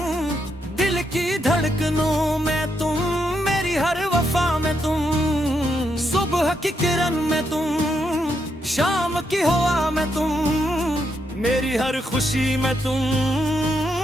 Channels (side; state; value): both; normal; correlation 0.80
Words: दिल की धड़कनों में तुम, मेरी हर वफा में तुम, सुबह की किरण में तुम, शाम की हवा में तुम, मेरी हर खुशी में तुम,